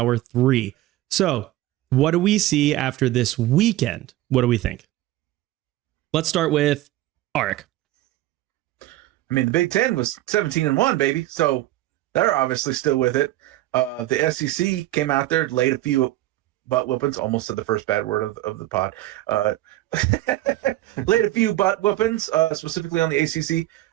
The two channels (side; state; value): left; quieter; 15.9 dB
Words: 3. So what do we see after this weekend? What do we think? Let's start with Arik. I mean, the Big Ten was 17-1, baby. So they're obviously still with it. The SEC came out there, laid a few butt whoopings. Almost said the first bad word of the pod. Laid a few butt whoopings, specifically on the ACC.